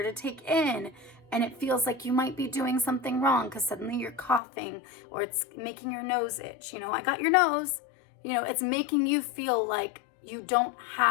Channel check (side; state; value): right; drops out; at 4.4 s